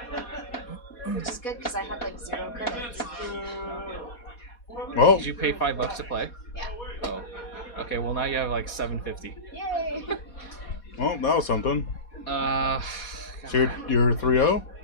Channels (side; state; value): right; late; 4.2 ms